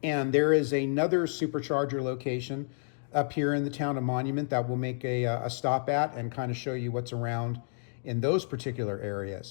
And there is another Supercharger location up here in the town of Monument that we'll make a stop at and kind of show you what's around in those particular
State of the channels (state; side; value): silent; right; 58 dB below the other